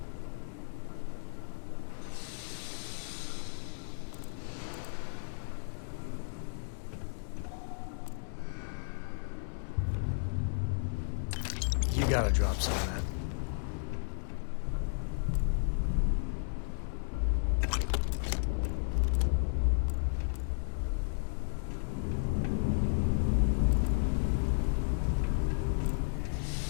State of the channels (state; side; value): silent; right; 55 dB below the other